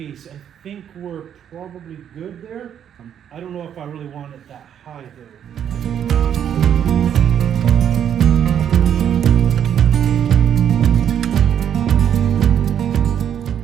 I think we're probably good there. I don't know if I really want it that high though.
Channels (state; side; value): quieter; left; 9.2 dB